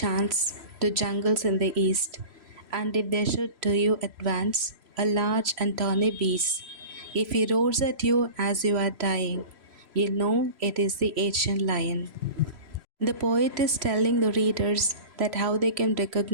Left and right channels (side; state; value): left; late; 3.0 ms